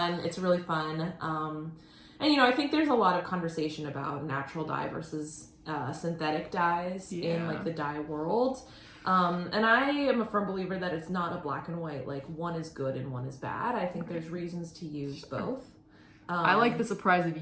really fun. And you know, I think there's a lot of conversation about natural dye versus synthetic dyes in like the dye world. And I am a firm believer that it's not a black and white, like one is good and one is bad. I think there's reasons to use both. I like the surprise of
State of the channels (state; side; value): identical; both; correlation 1.00